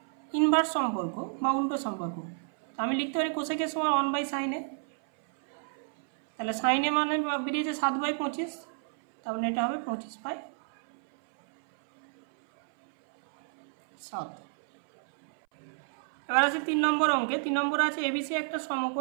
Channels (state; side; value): silent; left; 58 dB below the other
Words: ইনভার্স সম্পর্ক বা উল্টো সম্পর্ক, আমি লিখতে পারি কোসেকের সমান 1/sin এ। তাহলে সাইন এ মানে বেরিয়েছে 7/25, তাহলে এটা হবে 25/7। এবার আছে 3 নম্বর অঙ্কে। 3 নম্বর আছে এবিসি একটা